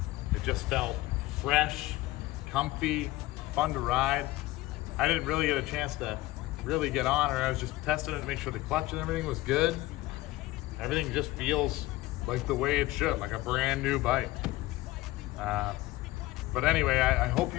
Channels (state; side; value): quieter; right; 18.3 dB